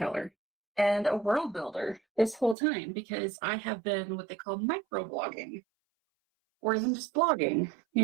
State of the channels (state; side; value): drops out; left; at 2.6 s